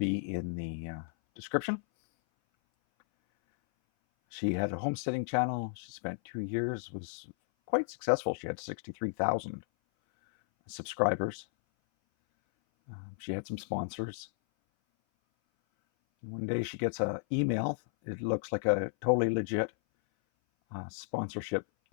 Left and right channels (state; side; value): silent; right; 55 dB below the other